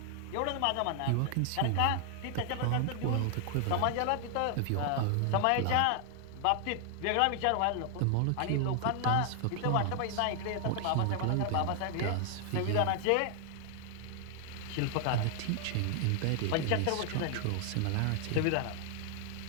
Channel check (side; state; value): both; different; correlation 0.00